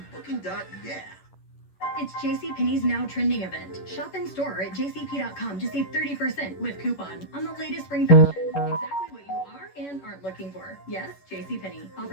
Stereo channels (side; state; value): right; late; 11 ms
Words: Booking.yeah. It's JCPenney's Now Trending event. Shop in store at jcp.com to save 30% with coupon on the latest spring fashion. Exactly what you are and aren't looking for. Yes, JCPenney.